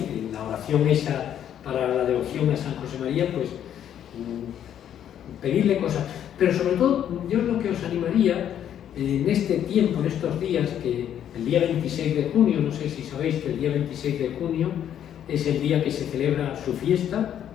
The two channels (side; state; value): right; quieter; 10.0 dB